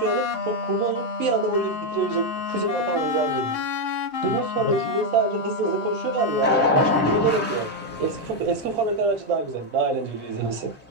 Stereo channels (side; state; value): both; normal; correlation 0.03